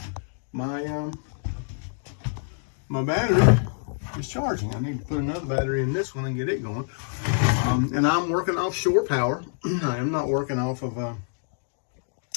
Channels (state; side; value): silent; right; digital silence